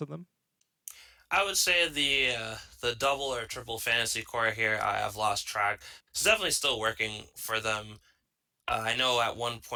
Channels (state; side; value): identical; both; correlation 1.00